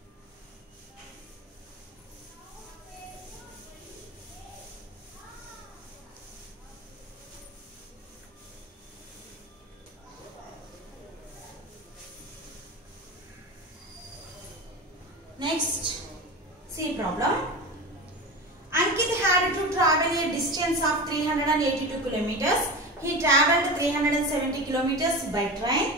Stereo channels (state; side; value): normal; both; correlation 0.27